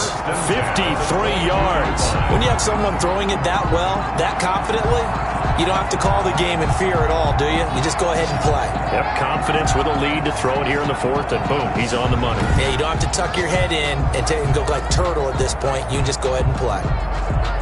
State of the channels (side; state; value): both; identical; correlation 1.00